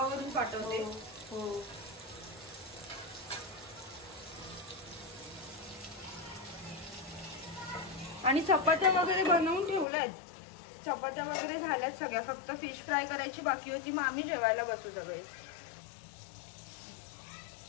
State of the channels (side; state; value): right; drops out; at 9.9 s